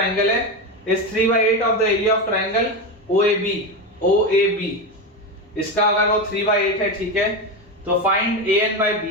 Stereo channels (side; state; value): both; normal; correlation 0.16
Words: है, is 3/8 of the area of triangle OAB. इसका अगर वो 3/8 है, ठीक है, तो find AN by